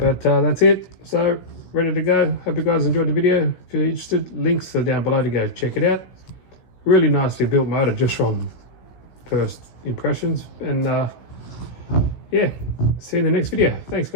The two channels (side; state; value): right; late; 16 ms